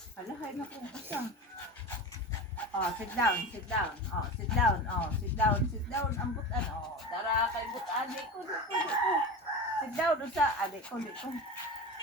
Hala, hay na kung usa. Oh, sit down. Oh, sit down. Ang butan. Oh, dara kay butan. Di ko. Sit down, usa. Di ko.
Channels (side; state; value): both; normal; correlation 0.28